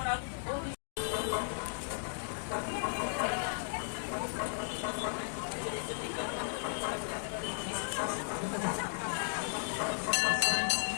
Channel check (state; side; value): silent; right; digital silence